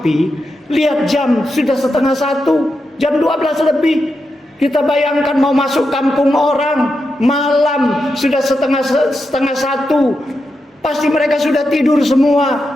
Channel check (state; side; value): normal; both; correlation 0.87